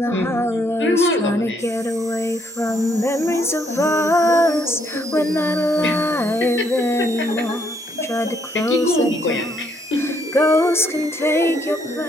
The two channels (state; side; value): normal; both; correlation 0.70